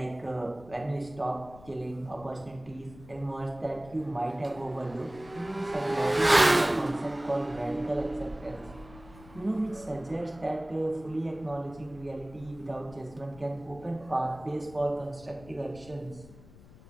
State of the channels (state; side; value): noise; left; rumble, 20 dB below the sound